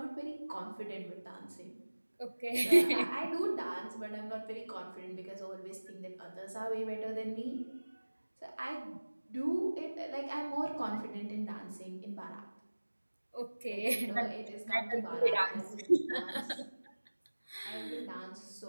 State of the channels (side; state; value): both; inverted; correlation -1.00